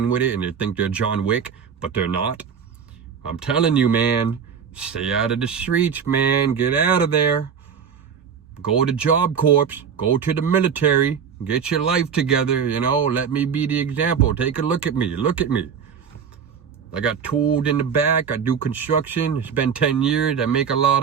with it, and they think they're John Wick, but they're not. I'm telling you, man, stay out of the streets, man. Get out of there. Go to Job Corps. Go to the military. Get your life together, you know. Let me be the example. Take a look at me. Look at me. I got tooled in the back. I do construction. It's been 10 years. I make a lot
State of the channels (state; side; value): quieter; left; 7.1 dB